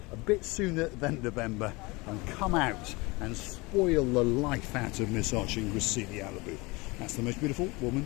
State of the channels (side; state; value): right; quieter; 24.7 dB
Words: a bit sooner than November and come out and spoil the life out of Miss Archie Gusivi out of the booth. That's the most beautiful